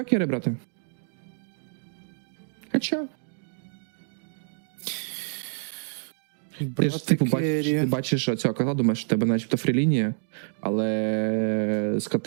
керрі брати. Хоча. Ти ж типу бачиш цього котла, думаєш, що в тебе начебто фрілінія, але з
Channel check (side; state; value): left; silent; digital silence